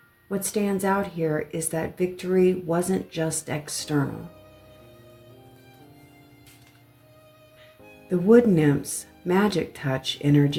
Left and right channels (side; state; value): both; identical; correlation 1.00